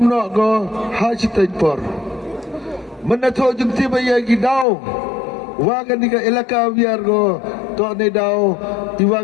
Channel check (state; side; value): drops out; right; at 4.7 s